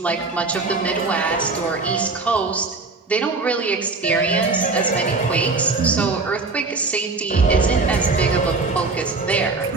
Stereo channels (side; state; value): left; quieter; 3.8 dB